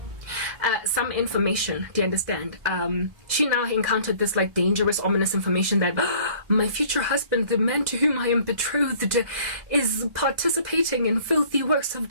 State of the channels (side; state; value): left; late; 2.0 ms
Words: Some information, do you understand? She now encountered this like dangerous, ominous information that my future husband, the man to whom I am betrothed, is participating in filthy works of